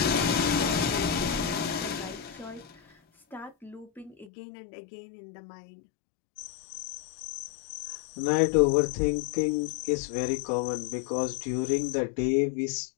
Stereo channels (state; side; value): drops out; right; at 4.3 s